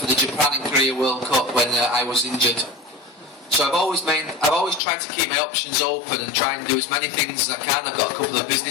the Japan and Korea World Cup when I was injured. So I've always tried to keep my options open and try and do as many things as I can. I've got a couple of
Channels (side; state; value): right; drops out; at 4.8 s